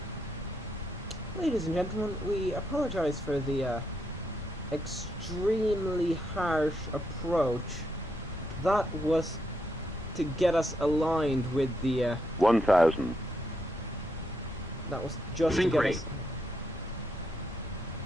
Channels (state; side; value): normal; both; correlation 0.79